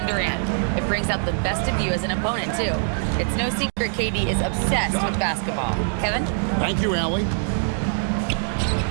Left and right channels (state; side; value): silent; left; digital silence